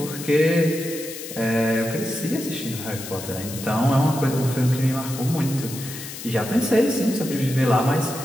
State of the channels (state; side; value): noise; left; hiss, 11 dB below the sound